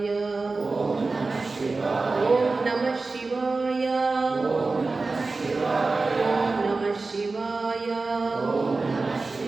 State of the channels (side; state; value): left; quieter; 3.7 dB